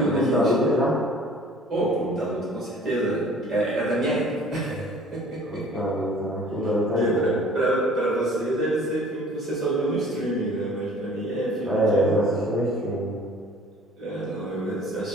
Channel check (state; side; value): normal; both; correlation 0.50